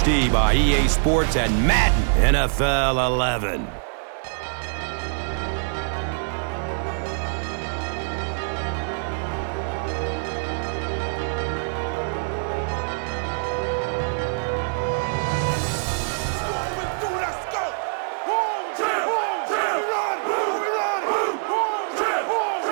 by EA Sports and Madden NFL 11.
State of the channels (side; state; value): left; silent; digital silence